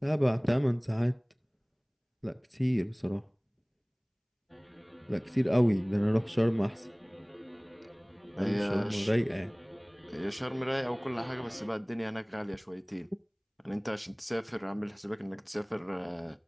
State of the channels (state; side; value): identical; both; correlation 1.00